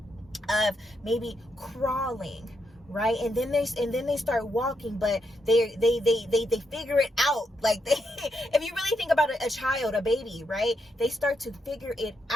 of maybe crawling, right? And then they start walking, but they figure it out. Like if you really think about a child, a baby, right? They start to figure it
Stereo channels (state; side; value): normal; both; correlation 0.81